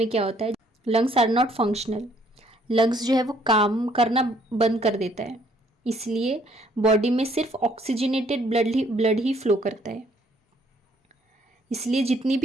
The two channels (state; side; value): normal; both; correlation 0.64